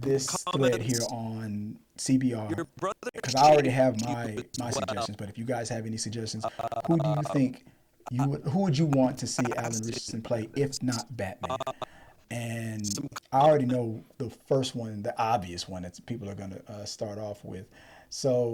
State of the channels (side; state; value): both; identical; correlation 1.00